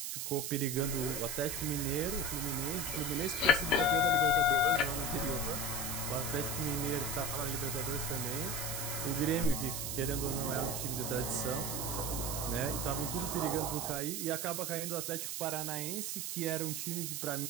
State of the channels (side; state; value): right; noise; hiss, 3 dB below the sound